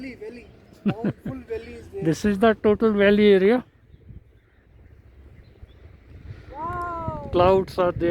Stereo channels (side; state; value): both; identical; correlation 1.00